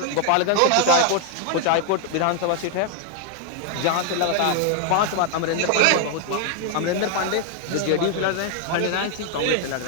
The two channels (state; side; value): different; both; correlation 0.00